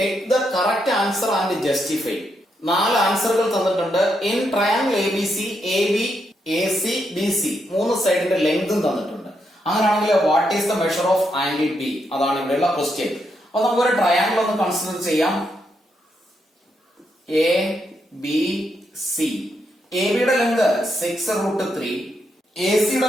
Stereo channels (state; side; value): normal; both; correlation 0.80